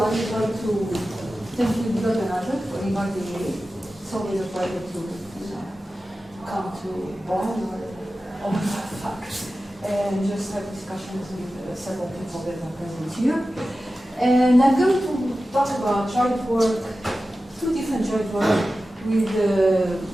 I would like to thank you, Degenerate, for inviting me. It's always a pleasure to come to Bonn or fact and just have discussions with several people that are present here. And I'm going to talk about joint work, two different joint work with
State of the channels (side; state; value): both; normal; correlation 0.94